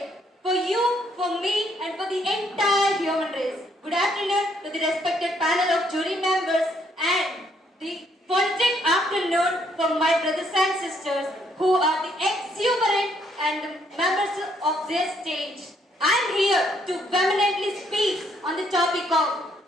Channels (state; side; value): normal; both; correlation 0.70